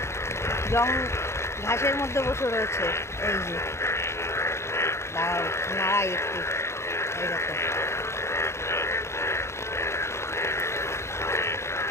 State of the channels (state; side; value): late; right; 0.13 ms